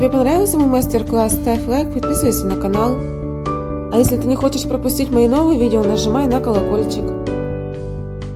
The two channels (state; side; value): identical; both; correlation 1.00